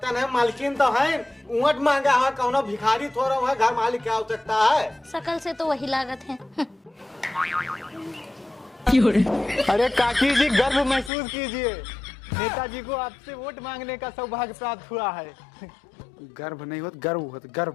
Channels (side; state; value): right; drops out; at 11.1 s